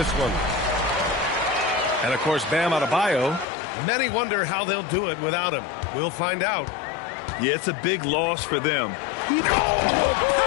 one. And, of course, Bam Adebayo. Many wonder how they'll do it without him. We'll find out. Yeah, it's a big loss for them. My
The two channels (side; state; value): right; drops out; at 3.5 s